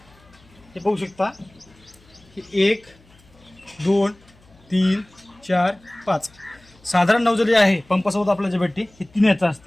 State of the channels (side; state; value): left; noise; hum, 29 dB below the sound